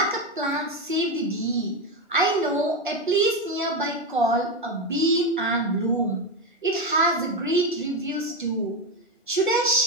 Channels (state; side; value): normal; both; correlation 0.12